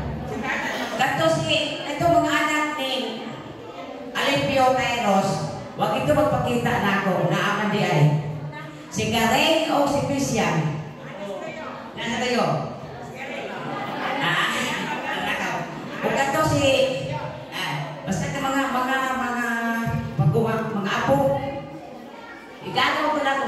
Ganto si, ito mga anak ni Alipio Tyros, wag ito magpakita na ako, naaman di ay. Si Karen o si Christian? Nasa kayo? Huwag ganto si, basta ka mga apo. Igagaw ko na ako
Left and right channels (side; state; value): both; identical; correlation 1.00